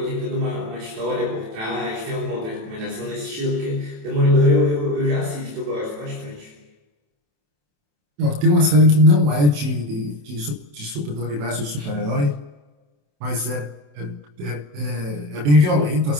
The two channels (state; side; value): late; left; 27 ms